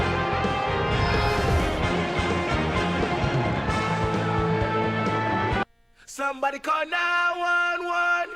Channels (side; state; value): both; identical; correlation 1.00